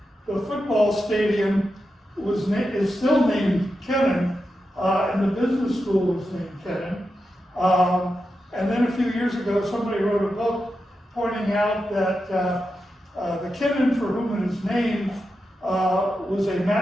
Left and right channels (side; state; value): both; normal; correlation 0.89